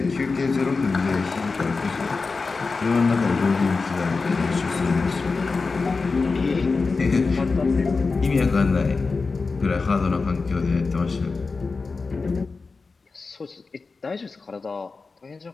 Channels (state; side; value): quieter; right; 4.2 dB